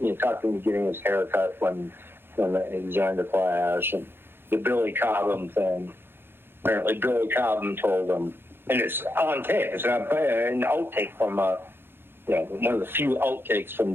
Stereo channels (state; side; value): late; left; 0.10 ms